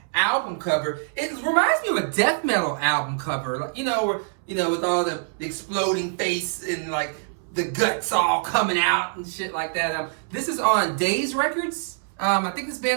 cover. It reminds me of a death metal album cover, like where with all the exploding face and like the guts all coming out and shit like that. This is on Days Records. I think this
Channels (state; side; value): silent; left; 62 dB below the other